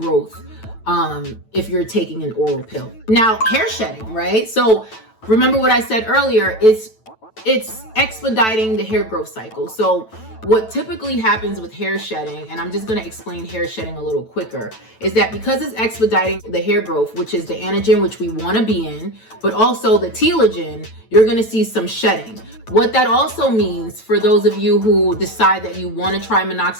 if you're taking an oral pill. Now, hair shedding, right? So remember what I said earlier, it's expediting the hair growth cycle. So what typically happens with hair shedding, and I'm just going to explain hair shedding a little quicker, is that because it's expediting the hair growth, which is the anagen, which we want to be in, but also the telogen, you're going to see some shedding. What that also means for those of you who decide that you want to try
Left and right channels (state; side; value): late; right; 9.1 ms